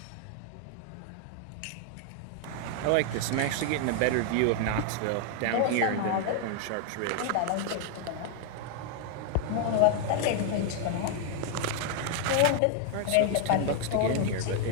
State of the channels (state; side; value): different; both; correlation 0.00